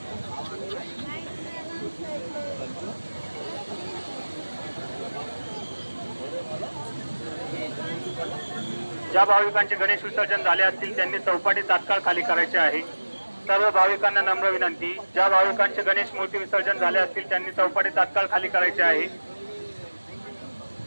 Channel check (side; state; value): both; inverted; correlation -1.00